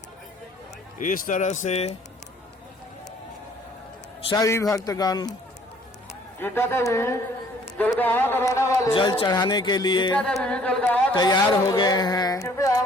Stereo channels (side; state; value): both; normal; correlation 0.58